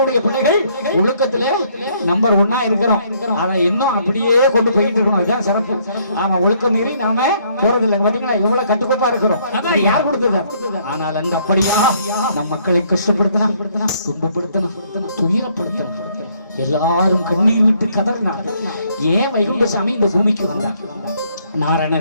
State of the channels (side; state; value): both; inverted; correlation -0.67